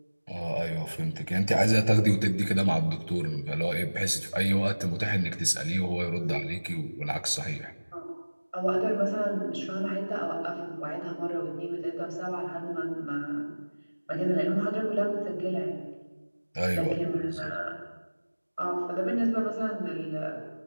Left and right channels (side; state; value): both; inverted; correlation -1.00